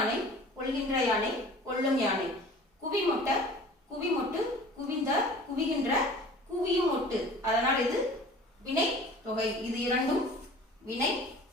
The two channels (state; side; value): normal; both; correlation 0.44